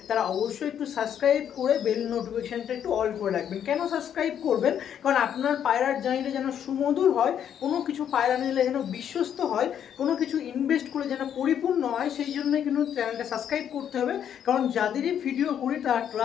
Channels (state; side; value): quieter; right; 9.2 dB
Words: তারা অবশ্যই একটু সাবস্ক্রাইব করে বেল নোটিফিকেশানটা একটু অল করে রাখবেন। কেন সাবস্ক্রাইব করবেন? কারণ আপনার পায়রার জার্নিটা যেন সুমধুর হয়, কোনো কিছু পায়রা নিলে যেন বিশ্বস্ত হয়, কোনো কিছু ইনভেস্ট করে যেন পরিপূর্ণ হয়, সেই জন্যই কিন্তু চ্যানেলটা সাবস্ক্রাইব করতে হবে। কারণ যাদেরই ভিডিও করি তারা